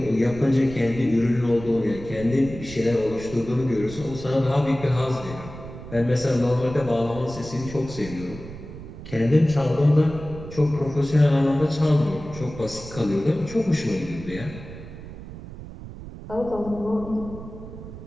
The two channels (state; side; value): noise; right; rumble, 13 dB below the sound